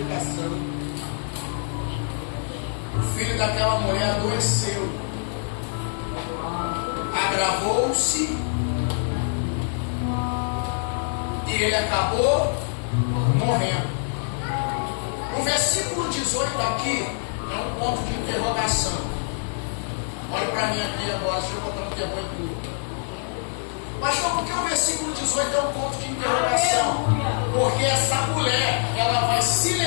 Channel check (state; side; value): silent; right; 61 dB below the other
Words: o filho daquela mulher adoeceu, agravou-se e ele acabou morrendo. O versículo 18 aqui é um ponto de interrogação. Olha para mim aqui agora, deixa eu botar um tempo em tudo. Mas só porque o versículo 18 é um ponto de interrogação? Porque essa mulher, ela vai se